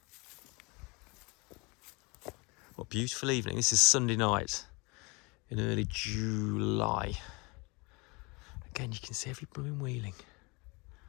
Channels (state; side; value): quieter; right; 27.5 dB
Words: What a beautiful evening. This is Sunday night in early July. Again, you can see every blooming wheeling.